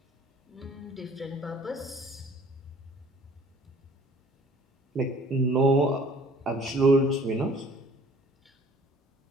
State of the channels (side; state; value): both; normal; correlation 0.54